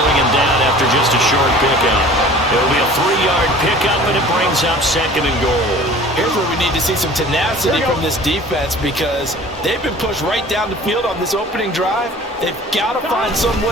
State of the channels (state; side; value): normal; both; correlation 0.45